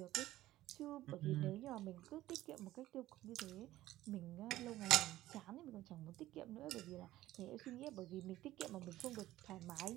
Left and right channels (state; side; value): quieter; left; 15.3 dB